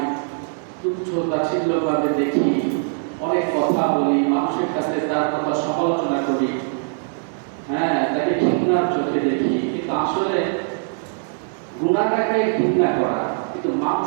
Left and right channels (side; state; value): left; silent; 64 dB below the other